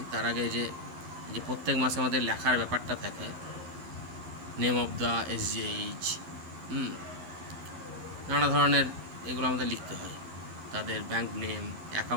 তার আগে যে প্রত্যেক মাসে আমাদের লেখার ব্যাপারটা থাকে, নেম অফ দ্য SGH, নানা ধরনের এগুলো আমাদের লিখতে হয়, তাদের ব্যাংক নেম,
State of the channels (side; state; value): left; late; 11 ms